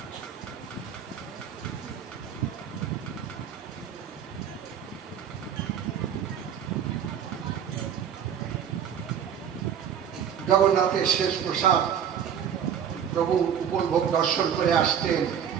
জগন্নাথের শেষ প্রসাদ প্রভু উপভোগ দর্শন করে আসতেন।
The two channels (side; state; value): left; quieter; 8.5 dB